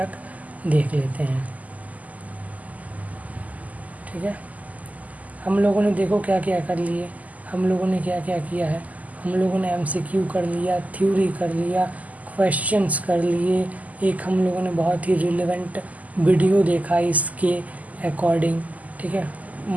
देख लेते हैं, ठीक है। हम लोगों ने देखो क्या क्या कर लिए, हम लोगों ने क्या क्या किया है। हम लोगों ने MCQ कर लिया, थ्योरी कर लिया, क्वेश्चंस कर लिए, एक हम लोगों ने बहुत ही रिलेवेंट वीडियो देखा इसके अकॉर्डिंग, ठीक है।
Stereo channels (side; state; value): left; late; 0.076 ms